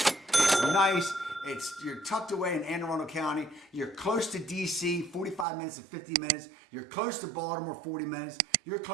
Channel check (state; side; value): drops out; left; at 5.5 s